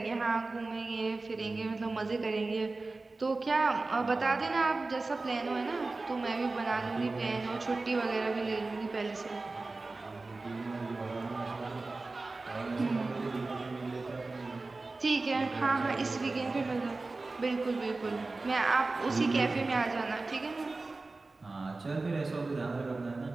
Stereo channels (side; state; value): left; quieter; 3.5 dB